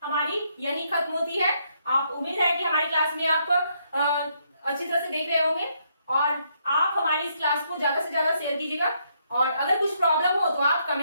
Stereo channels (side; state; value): both; inverted; correlation -0.74